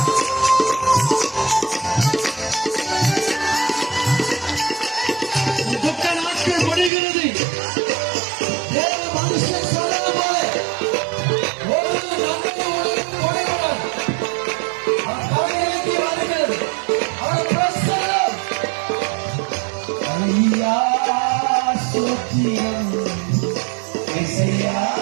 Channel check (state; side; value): drops out; left; at 6.9 s